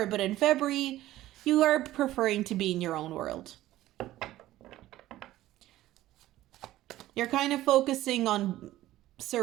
but in February, you are preferring to be in your own world. You're kind of focusing on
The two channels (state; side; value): quieter; left; 15.1 dB